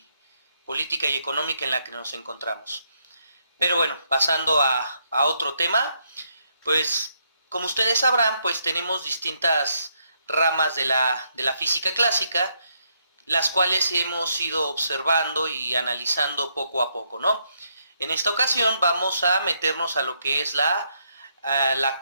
política y económica en la que nos encontramos. Pero bueno, pasando a otro tema, pues como ustedes sabrán, pues tenemos distintas ramas de la física clásica, las cuales hemos ido observando y analizando poco a poco, ¿no? En esta ocasión vamos a meternos a lo que es la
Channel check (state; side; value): inverted; both; correlation -0.75